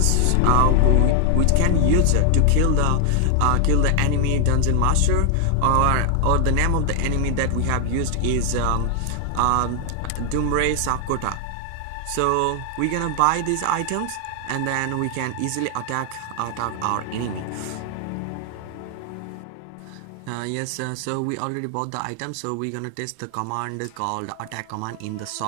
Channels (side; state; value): both; different; correlation 0.00